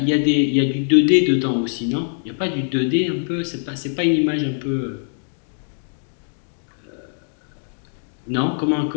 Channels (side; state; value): right; silent; digital silence